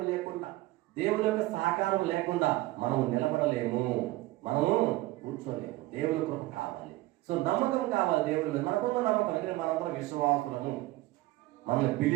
లేకుండా, దేవుని యొక్క సహకారం లేకుండా మనం నిలబడలేము, మనము కూర్చోలేము. దేవుని కృప కావాలి. సో నమ్మకం కావాలి దేవుడి మీద. మనకున్న నమ్మకం అంటే మనందరం విశ్వాసులము, మనల్ని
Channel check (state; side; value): quieter; left; 18.3 dB